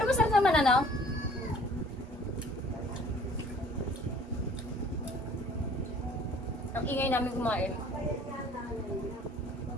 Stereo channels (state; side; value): normal; both; correlation 0.53